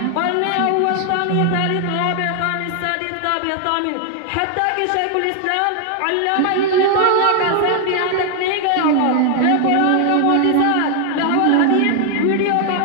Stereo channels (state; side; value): different; both; correlation 0.00